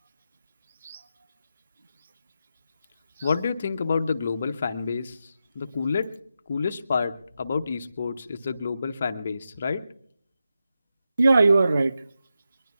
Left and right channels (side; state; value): both; inverted; correlation -0.88